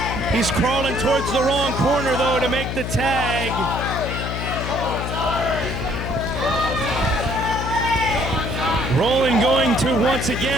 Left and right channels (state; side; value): noise; left; hum, 4 dB below the sound